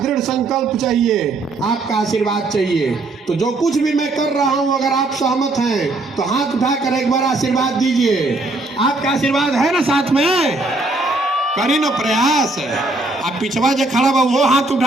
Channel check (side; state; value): left; quieter; 3.0 dB